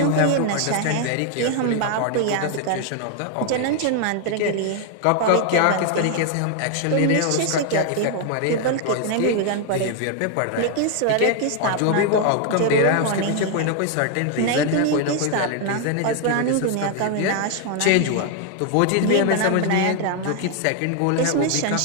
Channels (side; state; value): both; different; correlation 0.00